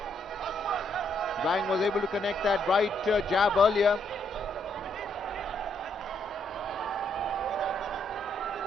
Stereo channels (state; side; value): normal; both; correlation 0.74